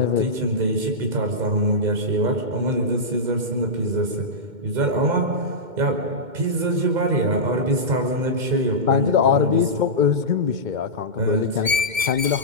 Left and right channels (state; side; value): late; left; 2.1 ms